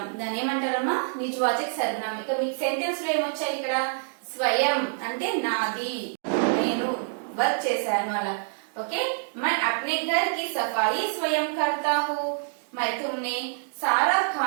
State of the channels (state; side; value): silent; left; digital silence